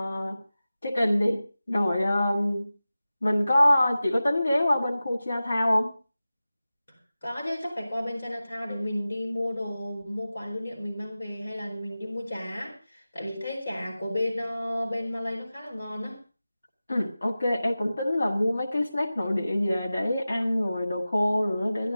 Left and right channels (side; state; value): both; inverted; correlation -0.95